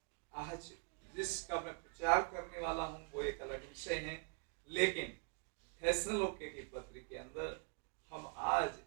आज जिसका मैं प्रचार करने वाला हूं वो एक अलग विषय है, लेकिन थेसलोनिके की पत्री के अंदर हम आज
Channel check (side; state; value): left; quieter; 39.3 dB